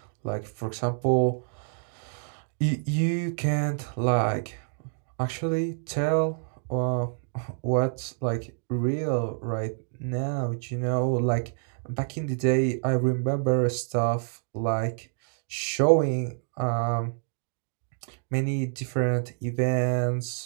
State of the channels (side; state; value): left; silent; digital silence